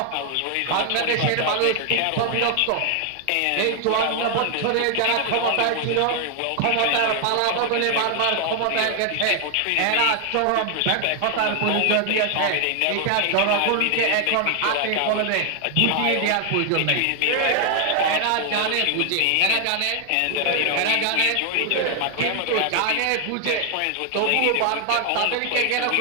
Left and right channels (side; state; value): both; different; correlation 0.00